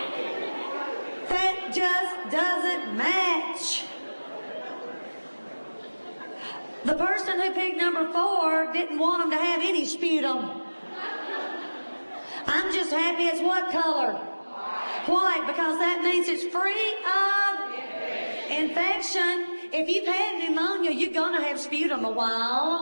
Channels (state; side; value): inverted; both; correlation -1.00